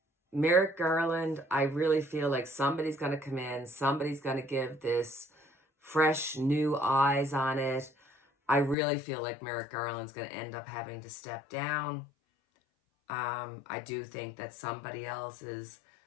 Merrick Garland. I really feel like somebody's going to come in, somebody's going to give this fresh new eyes on it. I really feel like Merrick Garland's going to end up having to step down. I do think that somebody else is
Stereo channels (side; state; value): right; drops out; at 8.8 s